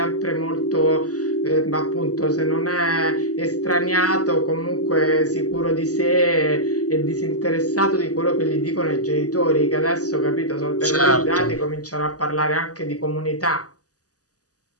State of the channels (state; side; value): late; right; 0.67 ms